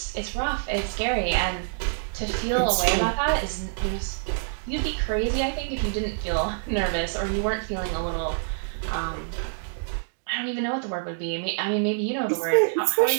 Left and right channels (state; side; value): silent; left; digital silence